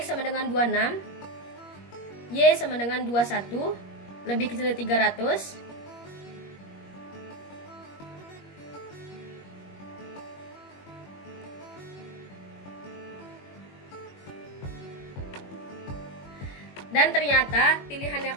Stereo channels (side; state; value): right; late; 21 ms